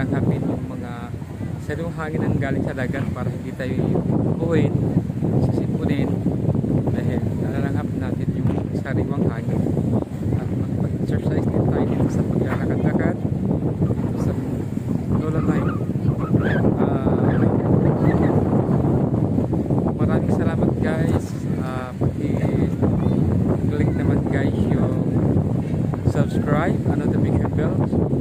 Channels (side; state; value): both; identical; correlation 1.00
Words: yung mga sariwang hangin ang galing sa dagat para hindi tayo buuin, sisipunin, dahil nalalanghap natin yung sariwang hangin at mag-exercise din tayo dito sa paglalakad-lakad dito sa Dolomite. Maraming salamat guys. Pag-click naman guys yung subscribe, notification bell,